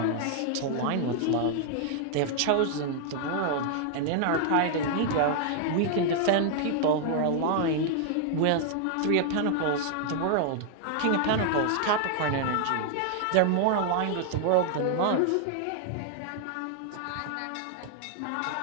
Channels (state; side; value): different; both; correlation 0.00